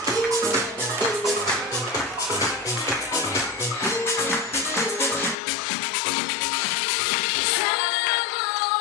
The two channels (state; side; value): drops out; right; at 5.4 s